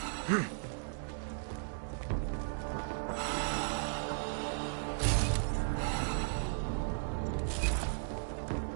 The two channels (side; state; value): left; silent; digital silence